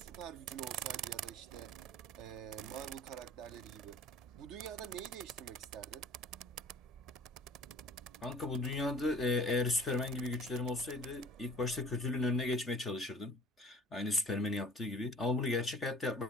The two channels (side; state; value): both; normal; correlation 0.48